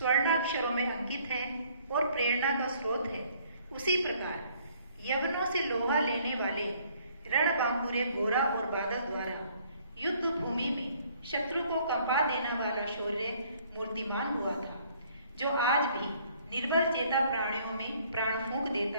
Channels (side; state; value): both; inverted; correlation -0.62